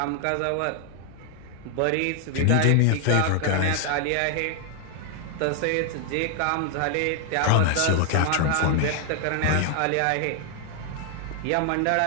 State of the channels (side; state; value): both; different; correlation 0.00